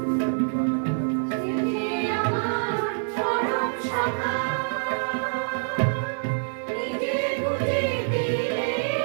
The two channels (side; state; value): left; silent; 61 dB below the other